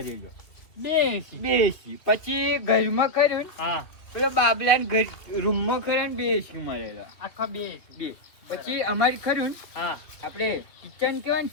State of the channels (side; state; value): right; late; 2.7 ms